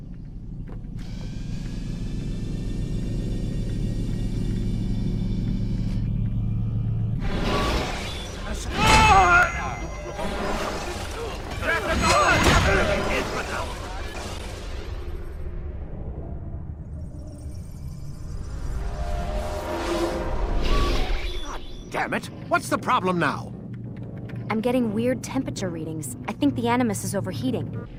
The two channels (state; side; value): identical; both; correlation 1.00